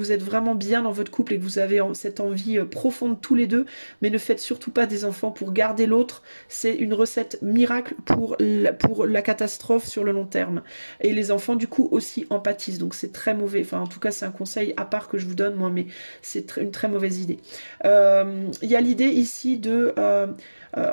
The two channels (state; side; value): inverted; both; correlation -1.00